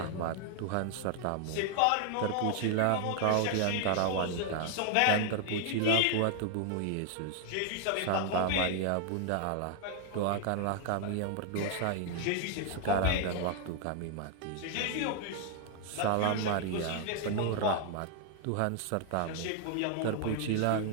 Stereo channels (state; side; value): different; both; correlation 0.00